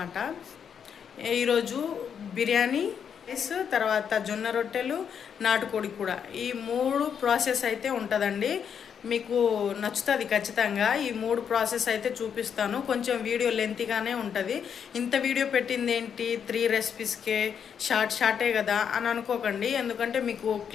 ఈరోజు బిర్యానీ రైస్, తర్వాత జొన్న రొట్టెలు, నాటుకోడి కూడా, ఈ 3 ప్రాసెస్ అయితే ఉంటుందండి. మీకు నచ్చుతుంది ఖచ్చితంగా. ఈ 3 ప్రాసెస్ అయితే చూపిస్తాను. కొంచెం వీడియో లెంతీగానే ఉంటుంది. ఇంత వీడియో పెట్టింది ఏంటి 3 రెసిపీస్కే, షార్టే కదా అని అనుకోకండి. ఎందుకంటే మీకు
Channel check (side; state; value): right; quieter; 7.6 dB